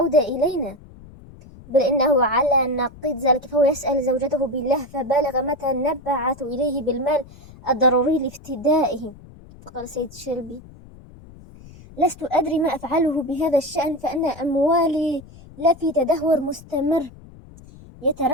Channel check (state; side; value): noise; left; rumble, 21 dB below the sound